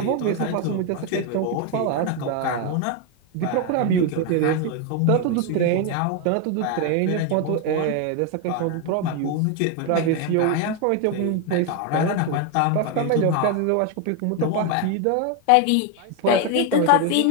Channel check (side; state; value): both; different; correlation 0.01